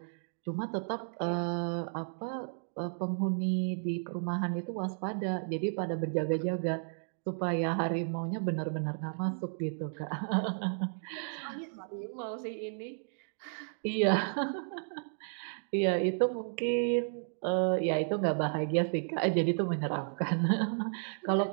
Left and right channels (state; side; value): silent; left; digital silence